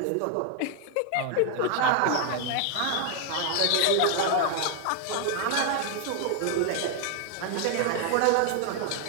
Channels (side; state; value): both; different; correlation 0.00